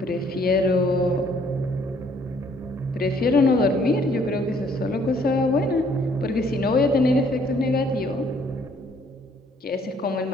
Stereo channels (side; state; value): both; normal; correlation 0.63